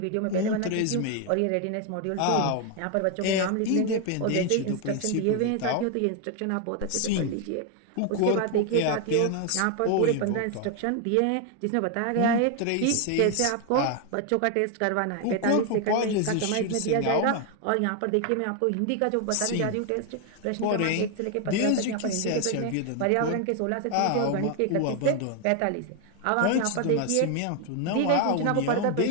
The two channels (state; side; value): different; both; correlation 0.01